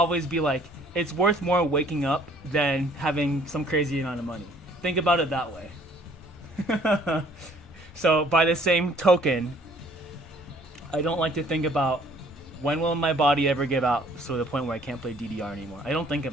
be like, it's worth more waking up than having some crazy amount of money. Think about it that way. So by the same token, I don't like to think about when will my body ever give out to the point where I can't play DDR anymore? I don't think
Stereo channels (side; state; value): both; normal; correlation 0.58